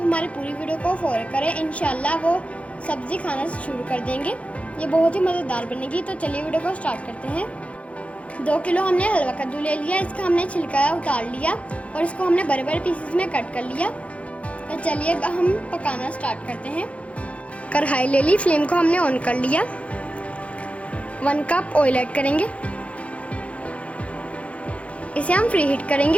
पूरी वीडियो को फॉलो करें, इंशाल्लाह वो सब्जी खाना शुरू कर देंगे। ये बहुत ही मज़ेदार बनेगी। तो चलिए वीडियो को स्टार्ट करते हैं। 2 किलो हमने हलवा कद्दू ले लिया। इसका हमने छिलका उतार लिया और इसको हमने बड़े बड़े पीसेस में कट कर लिया। तो चलिए हम पकाना स्टार्ट करते हैं। कढ़ाई ले ली, फ्लेम को हमने ऑन कर लिया। 1 कप ऑयल ऐड करेंगे, इसे हम फ्री हीट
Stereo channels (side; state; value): right; late; 0.063 ms